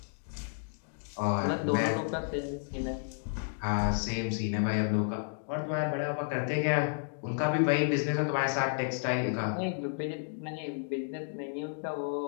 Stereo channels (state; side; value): silent; right; digital silence